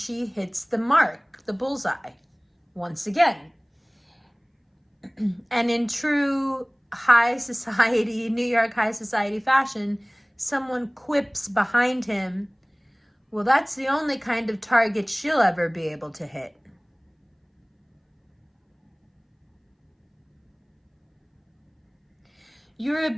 hits the mark, the bullseye, once again. And in true high society, New York high society fashion, someone quips behind him, well, that's the only kind of target she'll ever be able to hit. Her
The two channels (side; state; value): both; identical; correlation 1.00